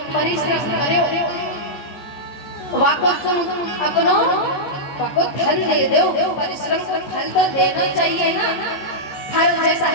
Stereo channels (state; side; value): late; right; 14 ms